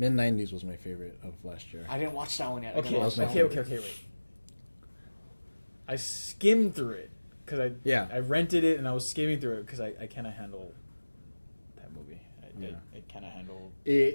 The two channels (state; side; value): inverted; both; correlation -1.00